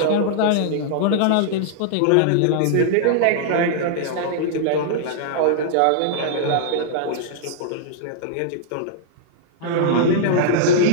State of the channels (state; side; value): different; both; correlation -0.01